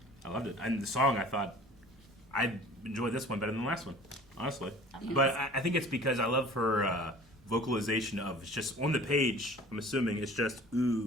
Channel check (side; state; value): both; normal; correlation 0.45